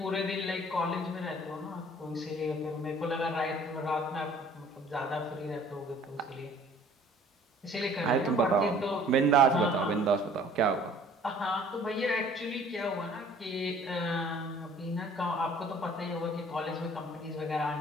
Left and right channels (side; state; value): both; normal; correlation 0.53